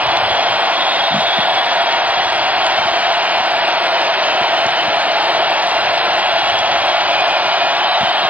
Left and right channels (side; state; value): left; late; 0.074 ms